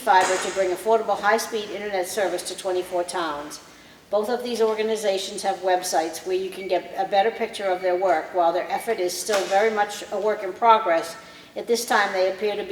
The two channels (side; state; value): both; identical; correlation 1.00